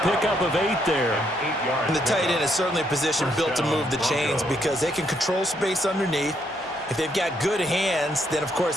pickup of 8 there. And the tight end is certainly a position built to move the chains because they can control space underneath. If they've got good hands, then, of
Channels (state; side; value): normal; both; correlation 0.74